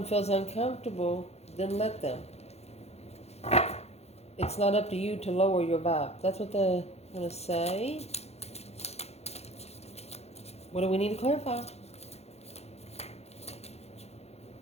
feels uncomfortable, then let them. It's not up to you to lower your vibe. That's what they're going to say. What do we need to clarify?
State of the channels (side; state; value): right; late; 0.31 ms